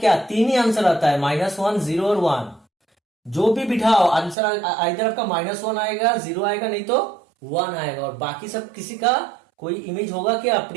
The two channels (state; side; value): drops out; left; at 4.4 s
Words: 3 ही आंसर आता है, -1 0 और 1, जो भी बिठाओ आंसर इधर आपका -1 आएगा, 0 आएगा, नहीं तो 1 आएगा, और बाकी सब किसी का कोई इमेज होगा क्या,